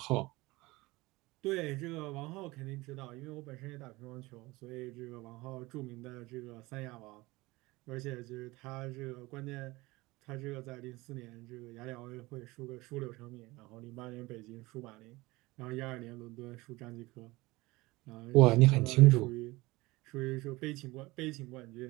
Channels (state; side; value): quieter; left; 21.3 dB